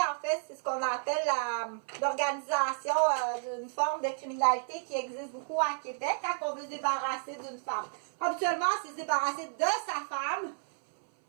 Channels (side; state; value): left; silent; 57 dB below the other